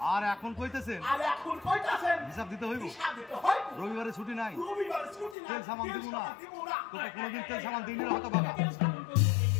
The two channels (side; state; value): right; drops out; at 5.4 s